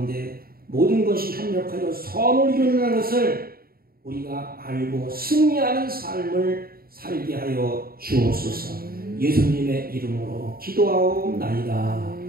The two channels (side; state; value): left; late; 0.43 ms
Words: 모든 것이 협력하여 선을 이루는 것을 우리가 알고 승리하는 삶을 살게 하여 주옵소서. 예수님의 이름으로 기도하옵나이다.